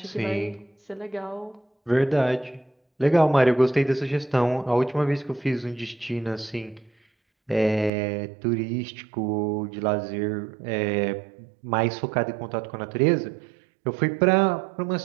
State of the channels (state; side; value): drops out; left; at 7.9 s